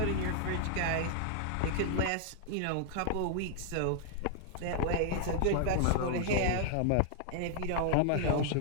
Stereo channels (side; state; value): both; different; correlation 0.00